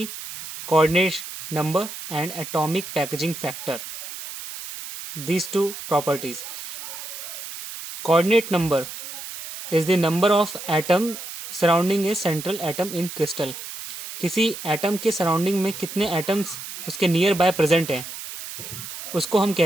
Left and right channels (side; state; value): right; noise; hiss, 10 dB below the sound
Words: coordinate number and atomic packaging factor. These two properties. Coordinate number is the number of atom surrounding a central atom in crystal. किसी एटम के सराउंडिंग में कितने एटम्स उसके नियर बाय प्रेजेंट हैं उसको हम